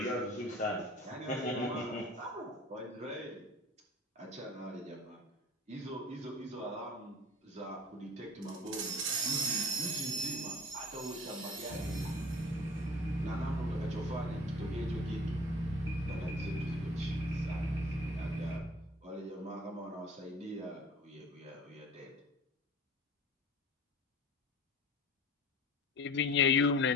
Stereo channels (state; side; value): normal; both; correlation 0.42